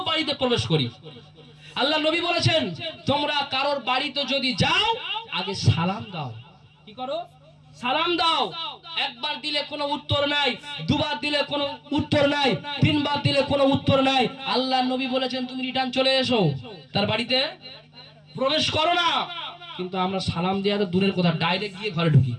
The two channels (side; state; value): both; identical; correlation 1.00